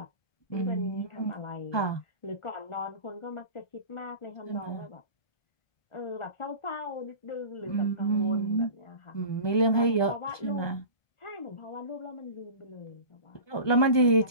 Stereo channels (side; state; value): right; late; 1.2 ms